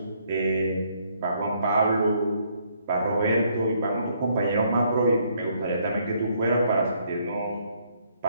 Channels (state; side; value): inverted; both; correlation -0.69